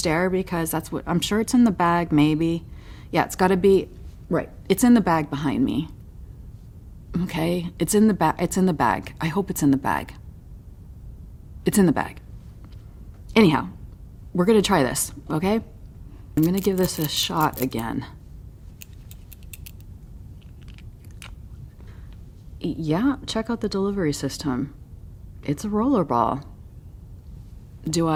because that's what, I'm sure it's in the bag, maybe. Yeah, it's gotta be, right, it's in the bag behind me. Okay, it's in the bag. It's in the bag. I hope it's in the bag. It's in the bag. Anyhow, we're gonna try this, okay? I'm gonna give this a shot again. Yeah, check out the delivery system. It's a rollerball. Do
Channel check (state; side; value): identical; both; correlation 1.00